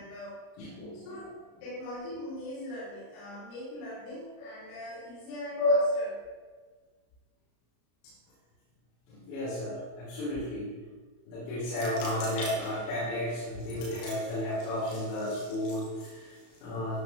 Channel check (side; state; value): right; late; 34 ms